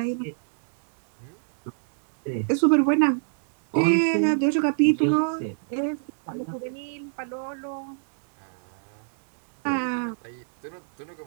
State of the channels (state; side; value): silent; left; digital silence